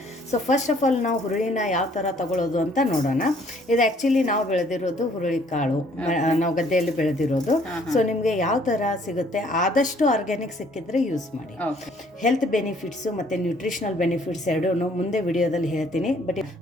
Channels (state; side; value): normal; both; correlation 0.61